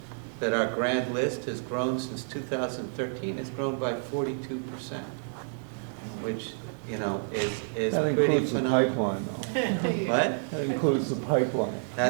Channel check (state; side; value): silent; left; 58 dB below the other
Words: that our grad list has grown since 2013, has grown by 42%, which, is That pretty includes the phenomenal. pipeline, though. What? That includes the pipeline.